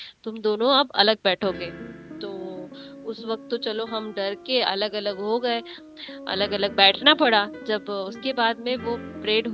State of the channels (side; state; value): both; identical; correlation 1.00